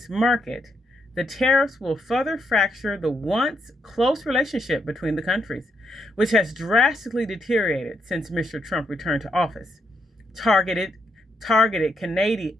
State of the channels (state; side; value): normal; both; correlation 0.78